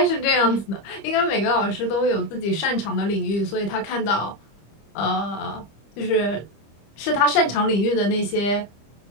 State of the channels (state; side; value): late; right; 25 ms